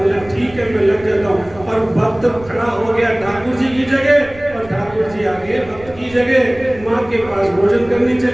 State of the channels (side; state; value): right; noise; rumble, 20 dB below the sound